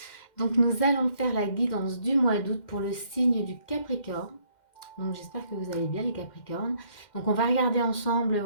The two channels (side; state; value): right; late; 2.1 ms